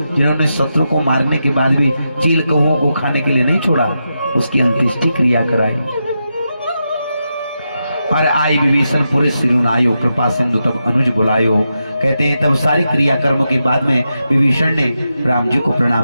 जिन्होंने शत्रु को मारने के बाद भी चील कौओं को खाने के लिए नहीं छोड़ा, उसकी अंत्येष्टि क्रिया कराई। और आई विभीषण पुरे सिरुनायो, कृपा सिंधु तब अनुज बुलायो। कहते हैं तब सारी क्रिया कर्म के बाद में विभीषण ने राम जी को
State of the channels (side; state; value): both; inverted; correlation -0.87